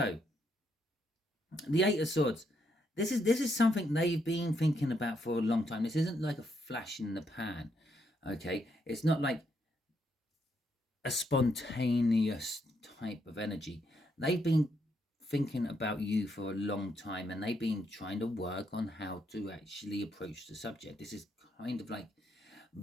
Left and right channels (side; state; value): both; normal; correlation 0.76